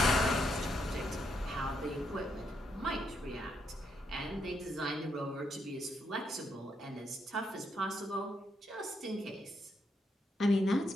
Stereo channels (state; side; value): normal; both; correlation 0.78